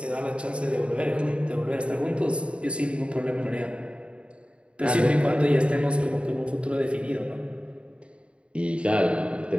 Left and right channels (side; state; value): left; late; 0.058 ms